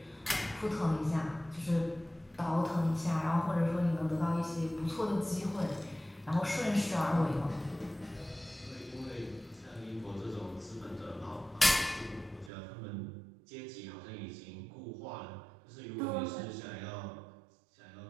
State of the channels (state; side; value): drops out; left; at 12.5 s